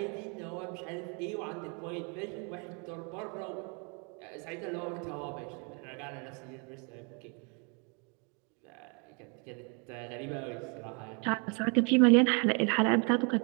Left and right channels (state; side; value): quieter; left; 34.9 dB